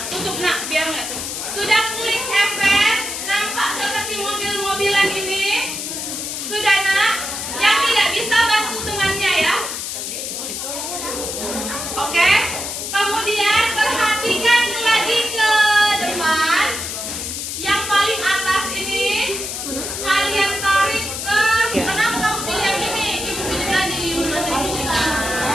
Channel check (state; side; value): noise; left; hiss, 5 dB below the sound